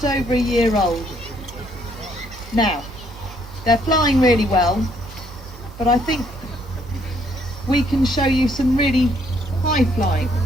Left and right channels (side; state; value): right; noise; hum, 20 dB below the sound